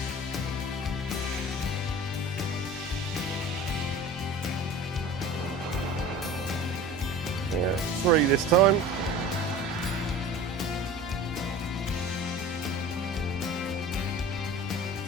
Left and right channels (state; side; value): normal; both; correlation 0.39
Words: Yeah, 3 this time.